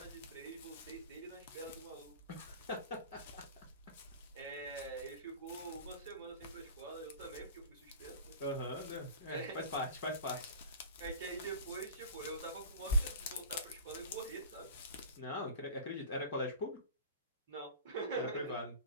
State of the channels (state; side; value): inverted; both; correlation -0.37